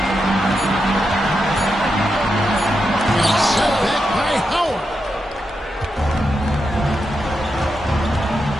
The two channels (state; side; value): normal; both; correlation 0.86